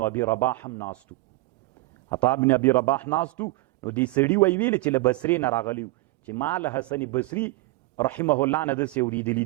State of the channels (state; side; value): quieter; left; 20.8 dB